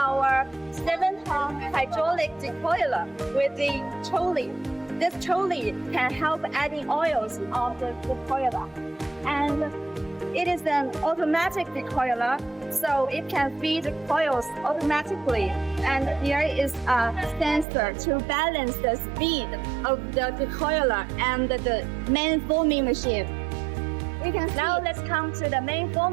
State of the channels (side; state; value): left; drops out; at 17.7 s